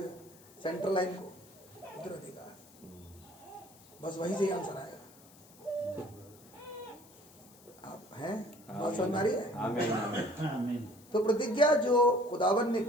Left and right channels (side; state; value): left; noise; hiss, 24 dB below the sound